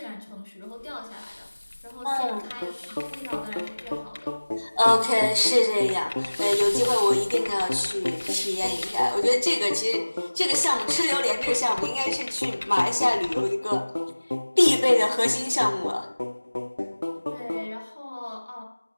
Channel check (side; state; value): both; inverted; correlation -1.00